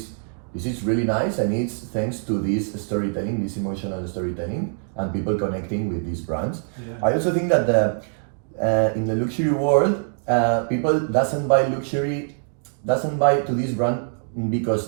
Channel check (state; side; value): silent; left; digital silence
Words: really nice, and it's thanks to this storytelling, this emotional storytelling, and people connecting with these brands. Yeah. I also think that in the luxury world, people doesn't buy to this brand